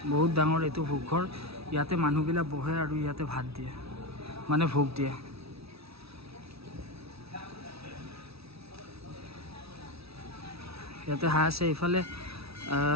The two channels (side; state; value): left; late; 0.77 ms